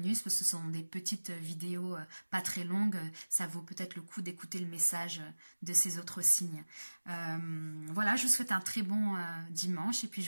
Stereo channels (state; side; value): inverted; both; correlation -1.00